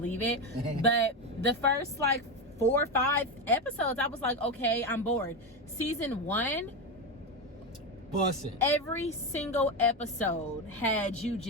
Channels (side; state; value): both; normal; correlation 0.14